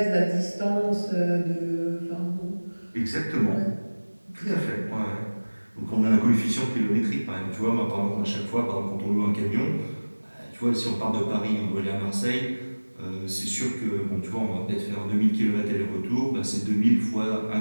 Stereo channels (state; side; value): inverted; both; correlation -1.00